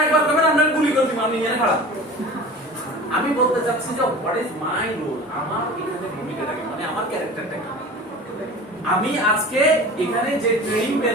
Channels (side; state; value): both; normal; correlation 0.37